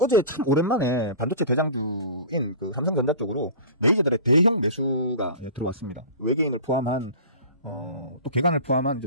참 오랜만에 반도체 대장주인 그 삼성전자 쪽으로 메이저들의 대형 매수가 들어왔습니다. 외계인을 포함한 또 개간을 포함한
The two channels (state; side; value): inverted; both; correlation -0.37